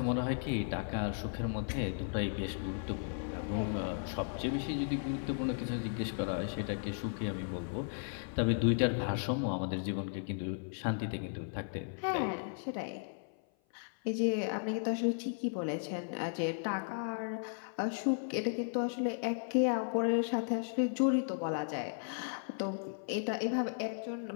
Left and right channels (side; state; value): right; silent; 54 dB below the other